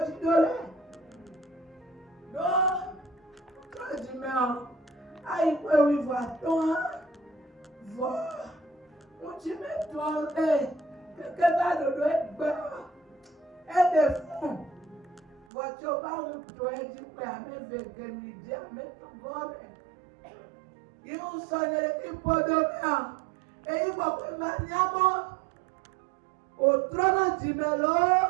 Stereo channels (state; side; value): drops out; left; at 15.5 s